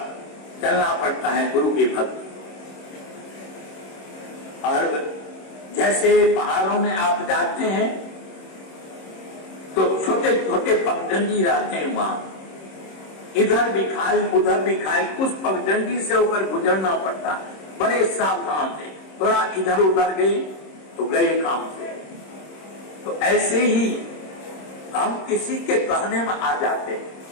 चलना पड़ता है गुरु की भक्ति। और जैसे पहाड़ों में आप जाते हैं तो छोटे छोटे पगडंडी रहते हैं, वहां इधर भी खाई उधर भी खाई, उस पगडंडी से होकर गुजरना पड़ता है। बड़े सावधान से, थोड़ा इधर उधर गए तो गए काम से। तो ऐसे ही हम किसी के कहने में आ जाते हैं,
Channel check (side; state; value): right; late; 26 ms